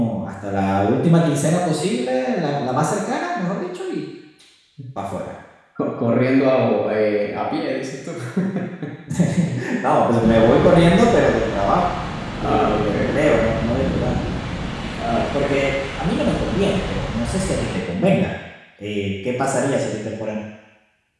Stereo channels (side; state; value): both; identical; correlation 1.00